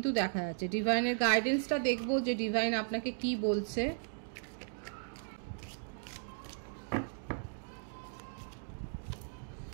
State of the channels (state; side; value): silent; left; digital silence